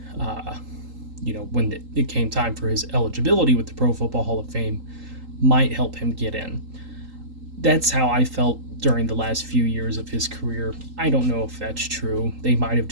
when it came time for his eligibility with the Pro Football Hall of Fame, might help him get in. That's how I felt during the last few years of his career. I don't know if that's true. They might have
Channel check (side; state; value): left; late; 3.8 ms